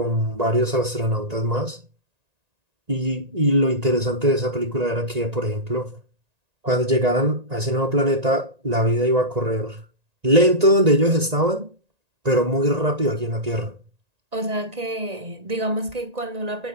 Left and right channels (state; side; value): late; left; 1.9 ms